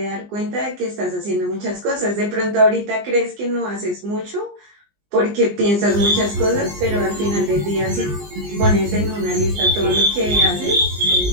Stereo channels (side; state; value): left; late; 19 ms